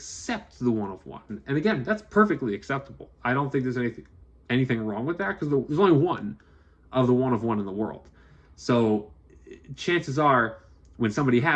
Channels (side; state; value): both; identical; correlation 1.00